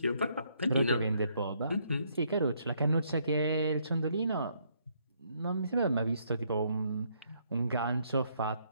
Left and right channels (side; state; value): both; inverted; correlation -0.71